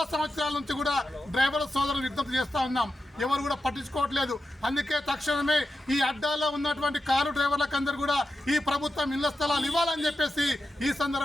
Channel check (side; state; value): both; normal; correlation 0.90